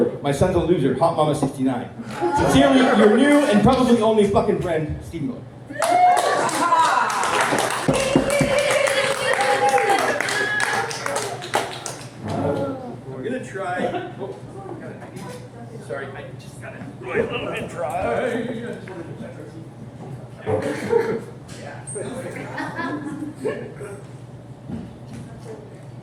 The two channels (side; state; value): both; identical; correlation 1.00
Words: my son's a loser, Hot Mama 69. Sincerely, your new and probably only fucking friend, Steve Miller. We're gonna try. Sorry, I just got it really a little bit dry.